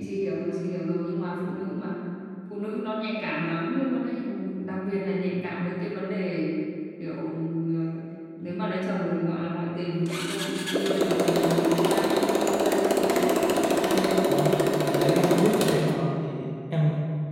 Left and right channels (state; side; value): identical; both; correlation 1.00